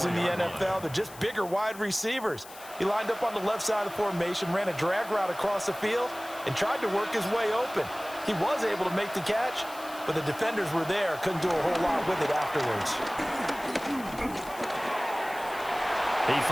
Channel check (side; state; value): left; noise; hiss, 18 dB below the sound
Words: in the NFL. They're just bigger wide receivers. He lined up on the left side of the formation, ran a drag route across the field, and tried to work his way open. He was able to make the catch, but the defenders were there, couldn't do a whole lot with it afterwards. He